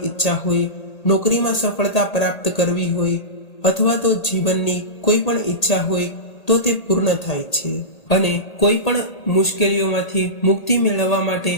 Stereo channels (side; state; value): right; late; 1.8 ms